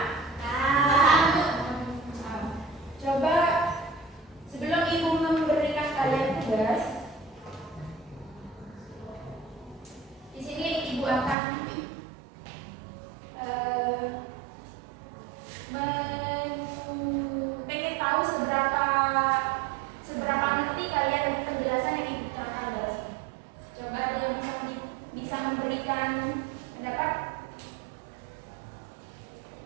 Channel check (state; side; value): drops out; left; at 11.4 s